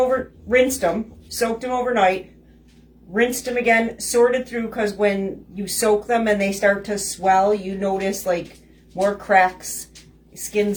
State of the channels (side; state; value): both; identical; correlation 1.00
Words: rinsed them again, sorted through, because when you soak them and they start to swell, you notice like more cracks,